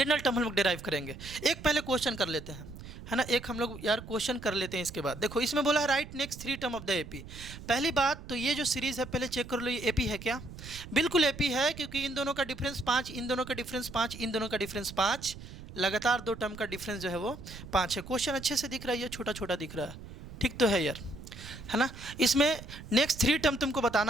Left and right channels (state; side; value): noise; right; rumble, 14 dB below the sound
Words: टर्म हम लोग डिराइव करेंगे। एक पहले क्वेश्चन कर लेते हैं, है ना, एक हम लोग यार क्वेश्चन कर लेते हैं। इसके बाद देखो, इसमें बोला है right next 3 term of the AP. पहली बात तो ये जो सीरीज है पहले चेक कर लो, ये एपी है क्या? बिल्कुल एपी है, क्योंकि इन दोनों का डिफरेंस 5, इन दोनों का डिफरेंस 5, इन दोनों का डिफरेंस 5, लगातार 2 टर्म का डिफरेंस जो है वो 5 है। क्वेश्चन अच्छे से दिख रहा है, ये छोटा छोटा दिख रहा है, ठीक तो है यार, है ना। इसमें नेक्स्ट 3 टर्म तुमको